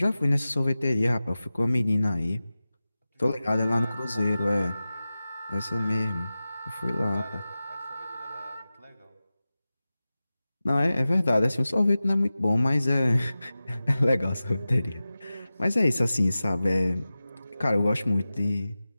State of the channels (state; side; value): inverted; both; correlation -0.95